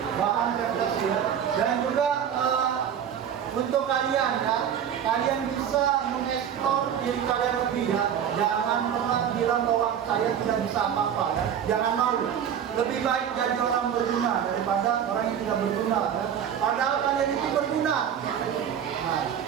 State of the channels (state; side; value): quieter; left; 8.8 dB